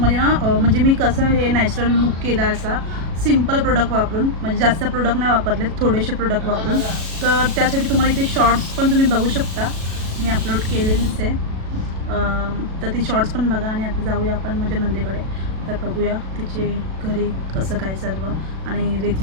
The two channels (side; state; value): left; late; 37 ms